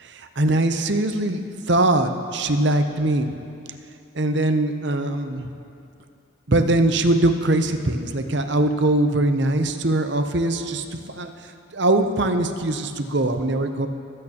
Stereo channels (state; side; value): normal; both; correlation 0.39